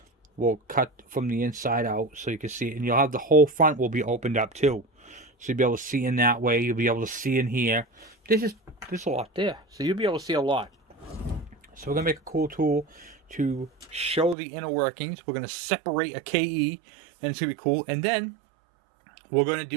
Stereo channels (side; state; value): left; drops out; at 14.4 s